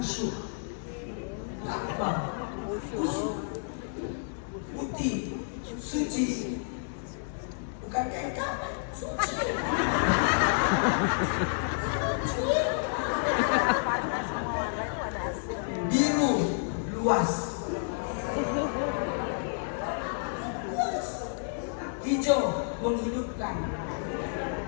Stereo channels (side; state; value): right; silent; digital silence